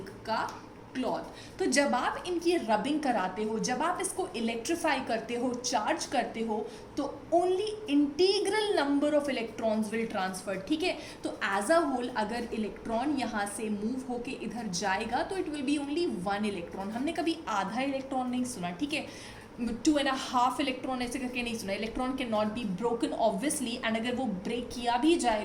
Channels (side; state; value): both; identical; correlation 1.00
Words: का क्लॉथ, तो जब आप इनकी रबिंग कराते हो, जब आप इसको इलेक्ट्रीफाई करते हो, चार्ज करते हो, तो only integral number of electrons will transfer, ठीक है। तो एज अ होल अगर इलेक्ट्रॉन यहाँ से मूव होके इधर जाएगा तो it will B only 1 electron. हमने कभी आधा इलेक्ट्रॉन नहीं सुना, ठीक है, 2.5 इलेक्ट्रॉन ऐसे करके नहीं सुना। Electron can not be broken obviously, and अगर वो ब्रेक किया भी